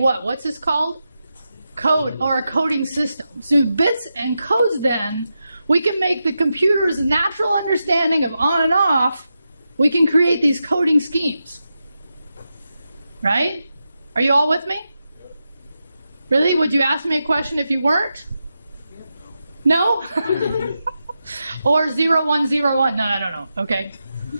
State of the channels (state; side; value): inverted; both; correlation -0.89